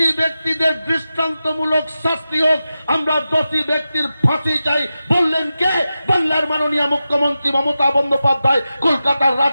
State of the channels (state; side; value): inverted; both; correlation -0.92